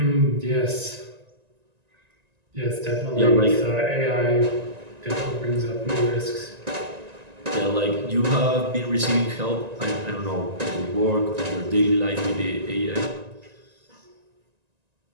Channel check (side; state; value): left; late; 1.9 ms